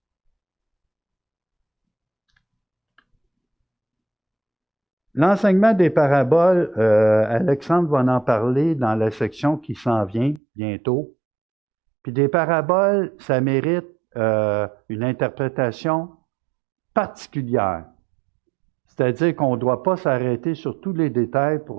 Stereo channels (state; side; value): drops out; left; at 10.4 s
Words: L'enseignement des paraboles, Alexandre va en parler dans la section qui s'en vient bientôt. Puis des paraboles, ça mérite une interprétation particulière. C'est-à-dire qu'on ne doit pas s'arrêter sur tous les détails